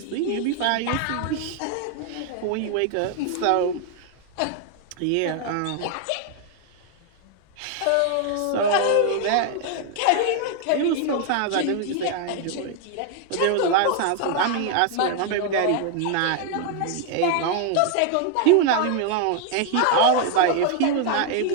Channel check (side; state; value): both; different; correlation 0.00